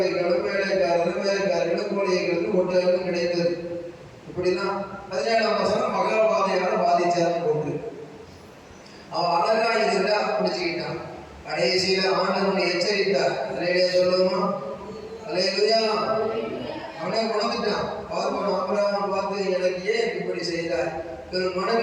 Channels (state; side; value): identical; both; correlation 1.00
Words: வேலைக்காரர்களும் கோழிகளும் ஒட்டகளும் கிடைத்தது. இப்படிலாம் 17ஆம் வசனம் மகாபாதையால பாதிச்சாருன்னு போட்டு அவன் அழகா இருந்தா பிடிச்சுக்கிட்டான். கடைசியில ஆண்டவனை எச்சரித்தார். அலையிலே சொல்லுவோமா, அலையிலுயா, அவனே உணர்ந்துட்டான். ஆபிரகாம் பார்த்து, எனக்கு ஏன் இப்படி செய்தார், ஒரு